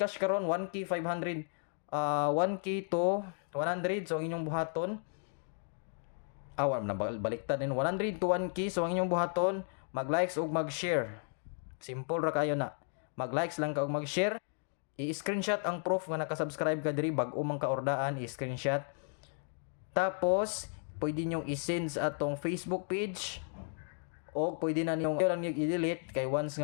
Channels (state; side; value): silent; right; 55 dB below the other